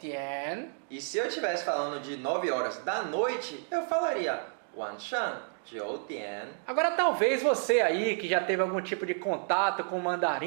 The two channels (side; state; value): left; silent; 57 dB below the other